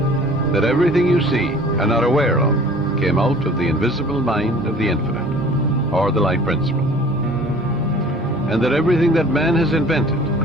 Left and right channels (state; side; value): normal; both; correlation 0.48